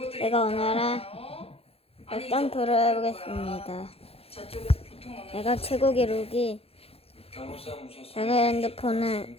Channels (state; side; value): late; right; 0.28 ms